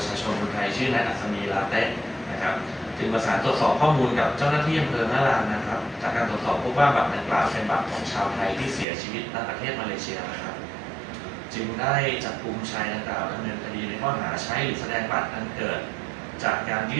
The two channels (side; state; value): left; drops out; at 8.8 s